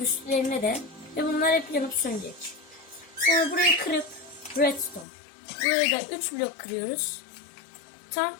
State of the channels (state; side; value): drops out; right; at 5.1 s